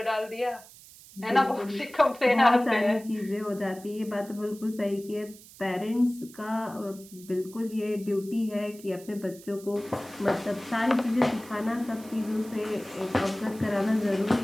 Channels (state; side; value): noise; right; hiss, 20 dB below the sound